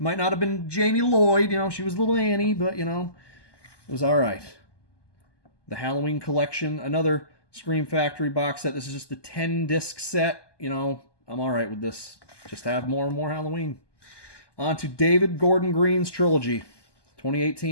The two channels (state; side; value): late; right; 1.2 ms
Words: might not have been Jamie Lloyd, you know, she was little Annie, but, you know, it was alright. The Halloween Collection, another Scream Factory box set. This is just the 10-disc set. You know, I'm alright with this. Just have more and more Halloween. On to David Gordon Green's trilogy.